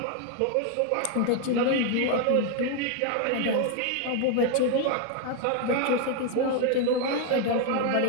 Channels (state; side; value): different; both; correlation 0.01